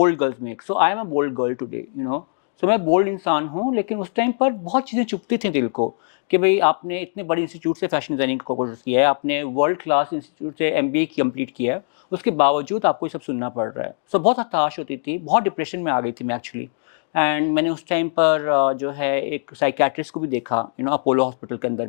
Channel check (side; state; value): right; silent; 64 dB below the other